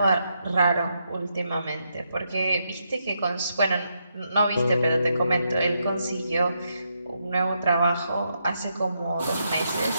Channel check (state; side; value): inverted; both; correlation -0.81